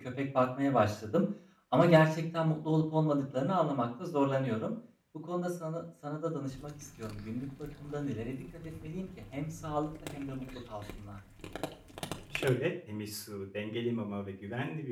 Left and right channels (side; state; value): both; identical; correlation 1.00